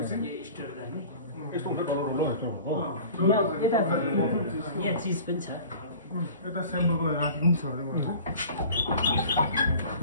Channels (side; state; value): both; inverted; correlation -0.42